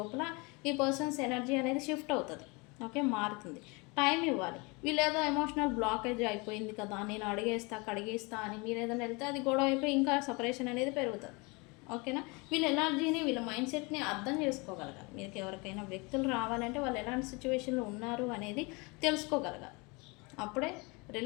ఈ పర్సన్స్ ఎనర్జీ అనేది షిఫ్ట్ అవుతుంది. ఓకే. మారుతుంది. టైం ఇవ్వాలి. వీళ్ళేదో ఎమోషనల్ బ్లాకేజ్ అయిపోయింది కదా, నేను కడిగేస్తా అని మీరేదైనా వెళ్తే అది గొడవ అయిపోయి ఇంకా సెపరేషన్ అనేది పెరుగుతుంది. ఓకేనా? వీళ్ళ ఎనర్జీని, వీళ్ళ మైండ్ సెట్‌ని అర్థం చేసుకోగలగాలి. మీకు ఎవరికైనా వ్యక్తులు రావాలంటే వాళ్ళు ఎలాంటి సిచ్యువేషన్‌లో ఉన్నారు అనేది తెలుసుకోగలగాలి. అప్పుడే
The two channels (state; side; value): quieter; right; 27.9 dB